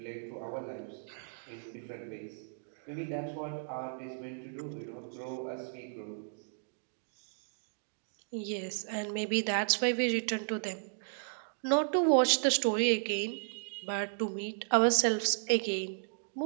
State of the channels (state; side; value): silent; left; digital silence